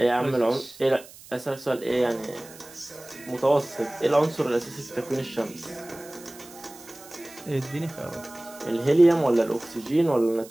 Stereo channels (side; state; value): right; noise; hiss, 20 dB below the sound